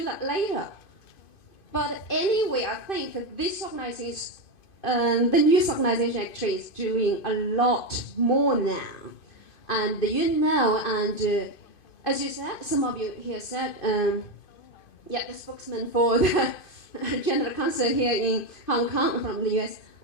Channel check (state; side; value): late; right; 2.5 ms